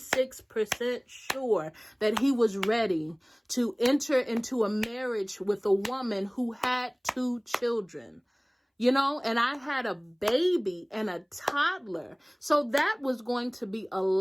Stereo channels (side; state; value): both; identical; correlation 1.00